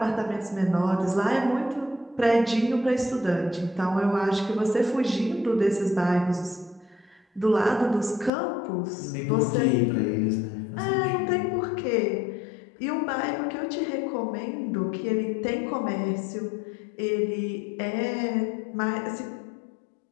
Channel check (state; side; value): drops out; right; at 8.3 s